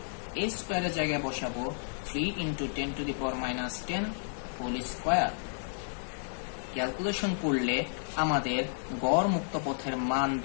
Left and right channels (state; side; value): silent; right; digital silence